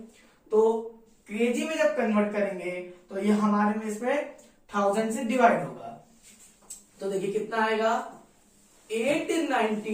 तो केजी में जब कन्वर्ट करेंगे तो ये हमारे में इसमें 1000 से डिवाइड होगा, तो देखिए कितना आएगा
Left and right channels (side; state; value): both; identical; correlation 1.00